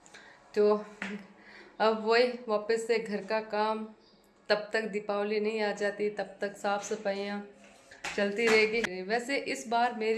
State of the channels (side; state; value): both; identical; correlation 1.00